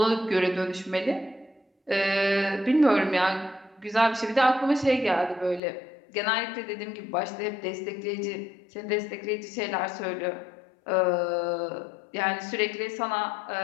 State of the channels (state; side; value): drops out; right; at 5.6 s